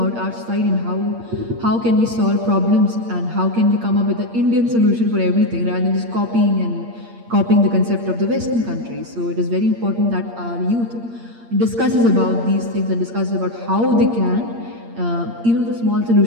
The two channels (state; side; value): late; left; 8.6 ms